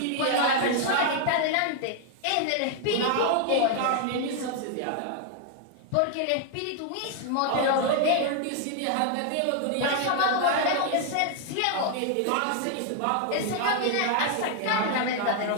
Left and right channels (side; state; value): both; different; correlation 0.00